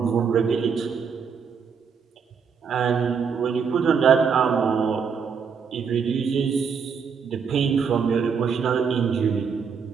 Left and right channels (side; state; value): left; quieter; 6.3 dB